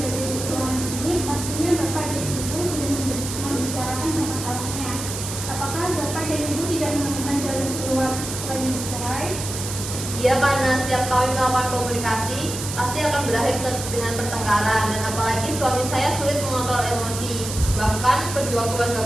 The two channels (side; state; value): right; noise; hiss, 7 dB below the sound